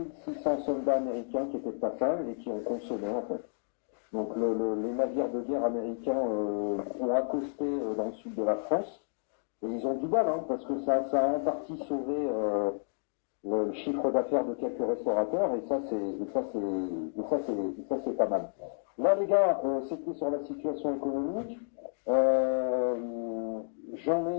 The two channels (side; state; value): right; silent; digital silence